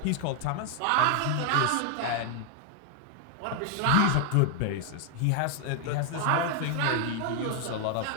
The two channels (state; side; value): different; both; correlation 0.00